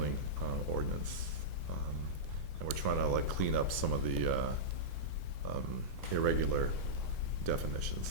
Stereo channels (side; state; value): right; late; 8.3 ms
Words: ordinance. And we're trying to like clean up some of the irregular definitions